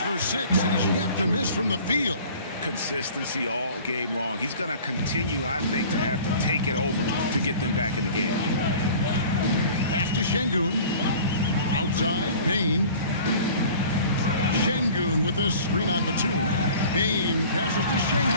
for 6. He's yet to miss from the field. Consistency all game long. He's going to continue, I think, to have to take it over to get them back in the game. Pass to Şengün. Outside, Payne. Şengün with a screen on Batum. Payne passes to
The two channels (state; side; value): inverted; both; correlation -0.45